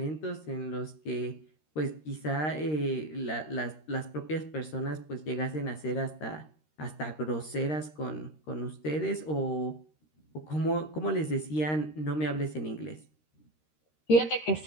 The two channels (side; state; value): right; late; 13 ms